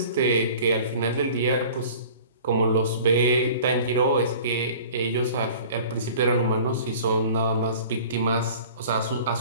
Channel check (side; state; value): both; inverted; correlation -0.45